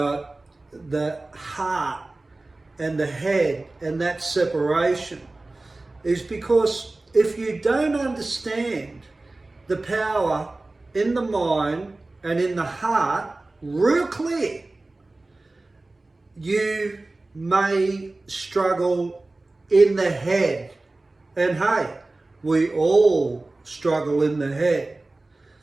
the heart and the head and that separation is because if you don't understand the power in the mind and in the heart real clear, you may struggle in the head. And hey, we all struggle in the head.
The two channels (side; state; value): left; quieter; 3.0 dB